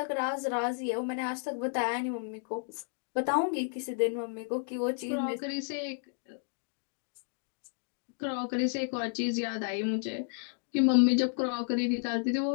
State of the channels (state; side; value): silent; right; 56 dB below the other